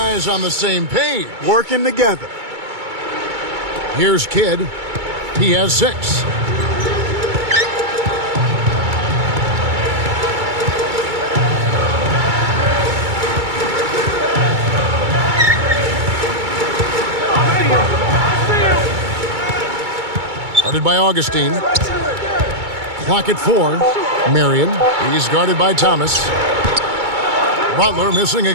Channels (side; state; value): left; late; 2.3 ms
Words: on the same page. Working together. Here's Kidd. He has 6. Guarded by Augustine. Clock at 4. Marion. He's guarded by Thomas. Butler missing